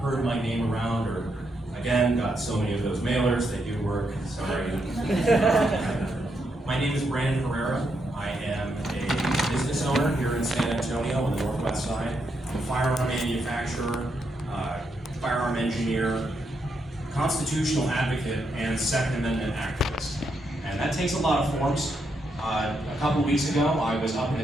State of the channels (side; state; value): both; normal; correlation 0.80